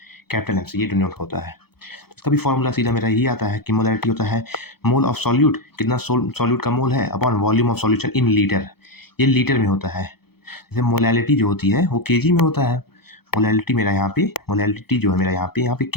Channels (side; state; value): right; late; 0.96 ms